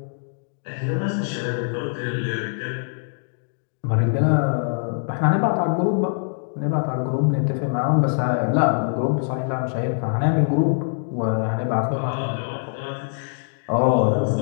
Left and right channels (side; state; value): right; silent; digital silence